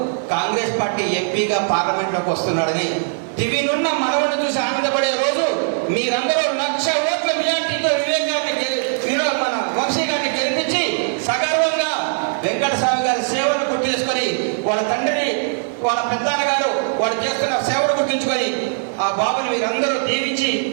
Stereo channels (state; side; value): silent; left; digital silence